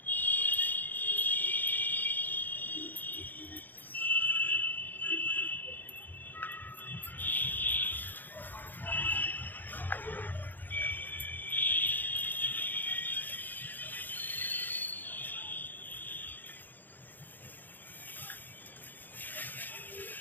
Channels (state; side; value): late; right; 0.087 ms